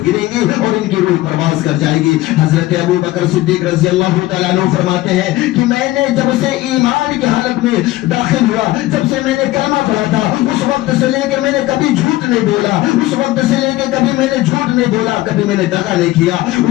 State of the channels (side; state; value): right; quieter; 17.0 dB